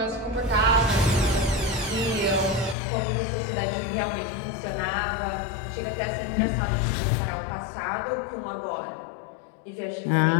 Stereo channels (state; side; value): drops out; right; at 2.8 s